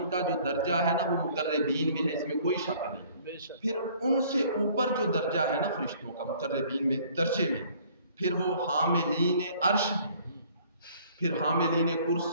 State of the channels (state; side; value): inverted; both; correlation -0.56